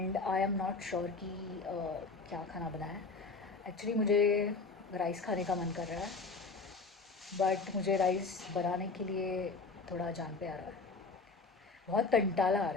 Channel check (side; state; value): right; quieter; 4.1 dB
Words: I am not sure कि क्या खाना बना है। एक्चुअली मुझे राइस खाने का मन कर रहा है, बट मुझे राइस बनाने के लिए थोड़ा जान पे आ रहा है, बहुत कंटाला आ